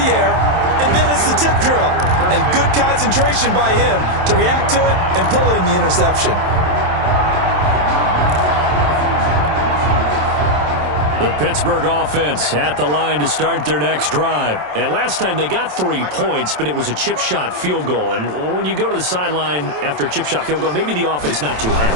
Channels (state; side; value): late; left; 27 ms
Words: air, and then it's the tip drill. And good concentration by him to react to it and pull in the interception. The Pittsburgh offense at the line to start their next drive. And last time they got 3 points, but it was a chip shot field goal. And when you go to the sideline after a chip shot field goal, maybe the offense not too